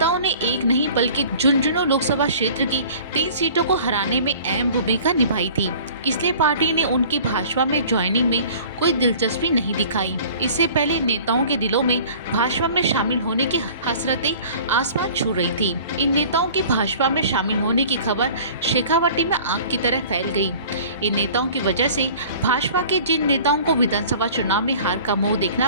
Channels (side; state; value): both; inverted; correlation -0.46